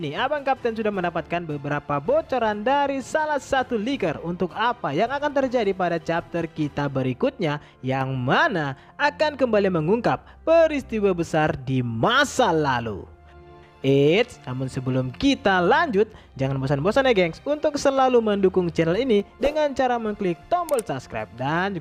Abang Kapten sudah mendapatkan beberapa bocoran dari salah satu leaker untuk apa yang akan terjadi pada chapter kita berikutnya, yang mana akan kembali mengungkap peristiwa besar di masa lalu. Namun sebelum kita lanjut, jangan bosan-bosan ya gengs untuk selalu mendukung channel ini dengan cara mengklik tombol subscribe dan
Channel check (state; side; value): identical; both; correlation 1.00